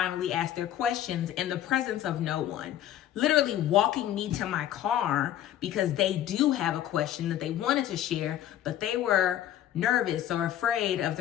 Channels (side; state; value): right; quieter; 11.8 dB